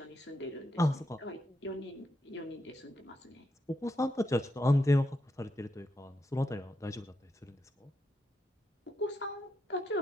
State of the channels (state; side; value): normal; both; correlation 0.82